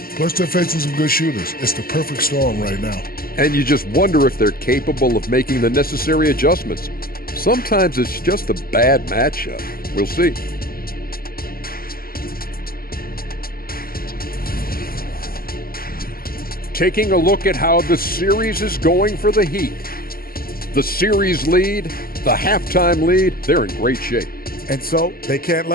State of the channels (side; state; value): right; late; 0.43 ms